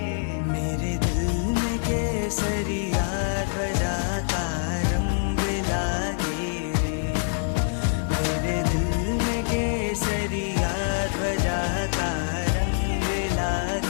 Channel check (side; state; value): right; silent; 56 dB below the other